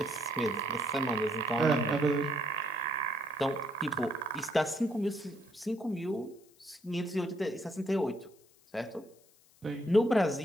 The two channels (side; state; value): left; noise; hiss, 29 dB below the sound